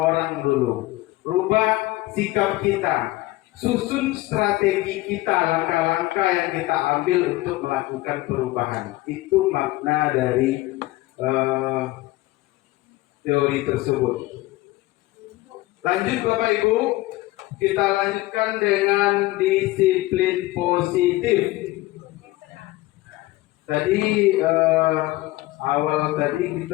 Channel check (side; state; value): right; quieter; 18.9 dB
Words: dulu. Rubah sikap kita, susun strategi kita, langkah-langkah yang kita ambil untuk melakukan perubahan. Itu makna dari teori tersebut. Lanjut Bapak Ibu, kita lanjutkan dengan disiplin positif. Tadi awal tadi